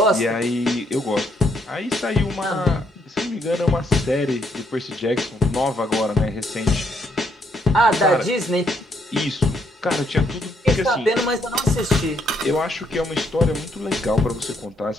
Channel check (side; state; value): both; normal; correlation 0.72